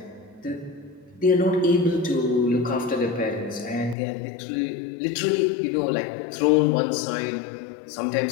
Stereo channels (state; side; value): drops out; right; at 4.0 s